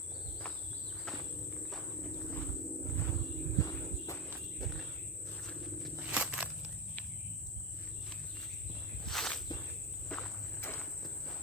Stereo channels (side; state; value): both; normal; correlation 0.15